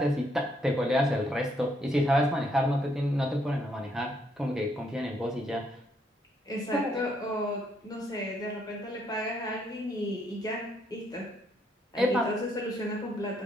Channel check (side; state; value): both; normal; correlation 0.72